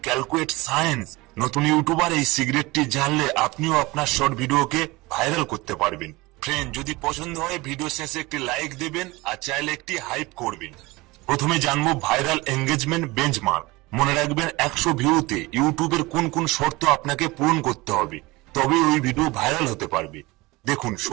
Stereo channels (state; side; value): quieter; left; 22.1 dB